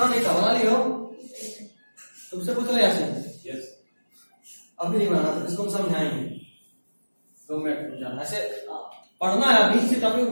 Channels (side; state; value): both; inverted; correlation -1.00